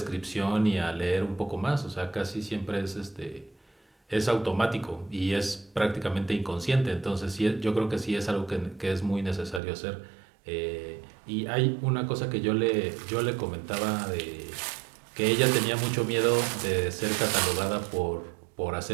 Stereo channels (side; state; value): left; drops out; at 9.6 s